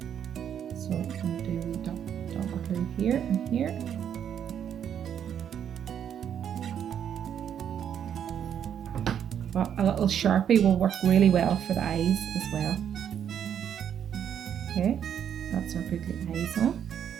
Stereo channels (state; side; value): quieter; left; 8.9 dB